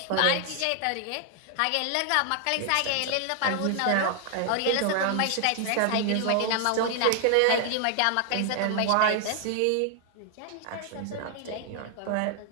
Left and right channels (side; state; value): both; different; correlation 0.00